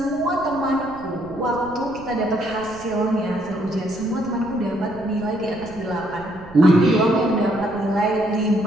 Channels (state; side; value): noise; right; rumble, 19 dB below the sound